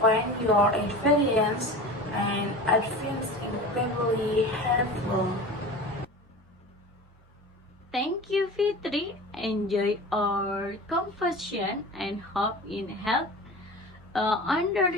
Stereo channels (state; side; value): normal; both; correlation 0.34